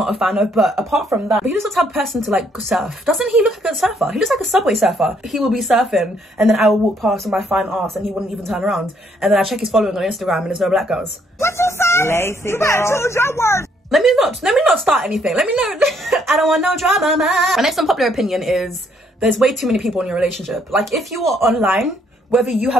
a fan of. But apart from that, he looks like the type of person to like surf. Doesn't he look like a surfer? He looks like a subway surfer. He will be surfing and then I will walk past with my fine ass and he wouldn't even turn around. And then I check his following on Instagram and there's no black girls. What you say? Lazy you better choose your words. Let me not start anything. Let me know. I don't want no drama, man. My next unpopular opinion is there's way too many people in your relationship. Like if you are online, whether you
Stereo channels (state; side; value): normal; both; correlation 0.69